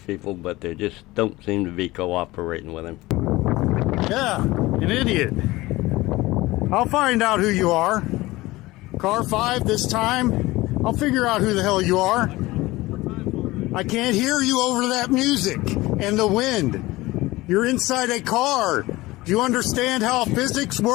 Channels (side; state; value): right; quieter; 19.5 dB